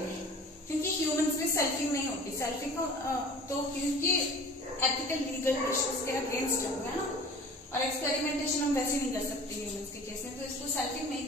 क्योंकि ह्यूमंस में सेल्फिंग नहीं होती। सेल्फिंग को तो क्योंकि एथिकल लीगल इश्यूज के अगेंस्ट है ना, और एक्सपेरिमेंटेशन हम वैसे नहीं कर सकते ह्यूमंस के केस में, तो इसको सेल्फिंग नहीं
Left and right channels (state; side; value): normal; both; correlation 0.43